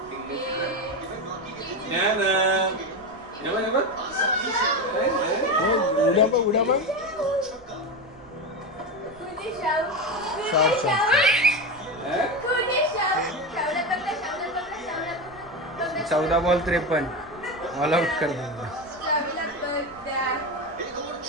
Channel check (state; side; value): noise; right; rumble, 26 dB below the sound